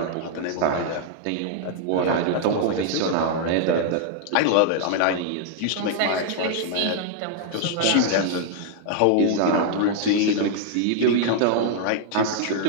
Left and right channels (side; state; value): both; different; correlation 0.00